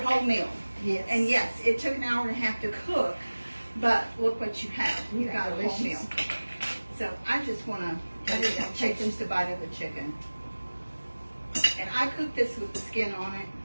meal. yes. And yes, it took an hour and a half to cook, but look what you have. You Yeah, got a whole delicious. meal. So I just want to take just a bite of the chicken. And I cooked this with the skin on it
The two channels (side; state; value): both; inverted; correlation -1.00